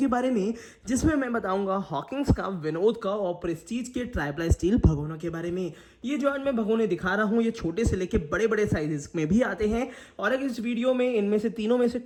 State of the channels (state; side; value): identical; both; correlation 1.00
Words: बारे में, जिसमें मैं बताऊंगा हॉकिंस का, विनोद का और प्रेस्टीज के ट्राईप्लाई स्टील भगोनों के बारे में। ये जो आज मैं भगोने दिखा रहा हूँ, ये छोटे से लेके बड़े बड़े साइजेस में भी आते हैं। और अगर इस वीडियो में इनमें से तीनों में से